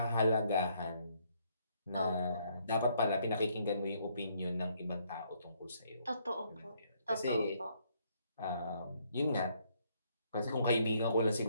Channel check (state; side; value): inverted; both; correlation -0.70